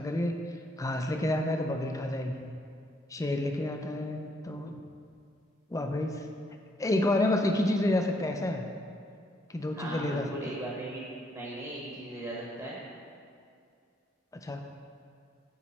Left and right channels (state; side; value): normal; both; correlation 0.72